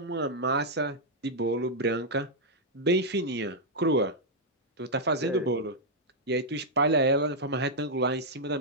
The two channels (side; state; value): both; normal; correlation -0.04